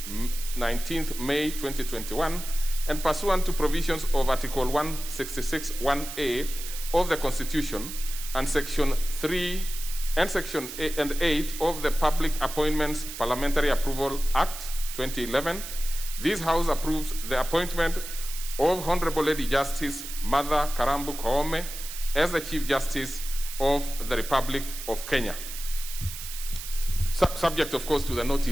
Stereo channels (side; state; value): right; noise; hiss, 9 dB below the sound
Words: 19th May 2021, and pursuant to provisions of Article 166(1)(a) of the Constitution and Section 3 and Section 8 of the Public Appointments Parliamentary Approval Act 2011, this House approves the appointment of Honorable Lady Justice Martha Karambu Koome as the Chief Justice of the Republic of Kenya. Subject, of course, to the